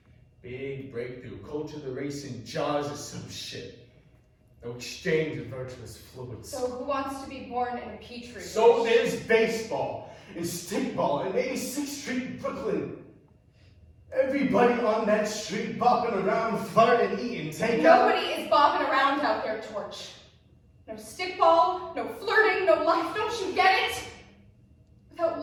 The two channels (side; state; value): both; identical; correlation 1.00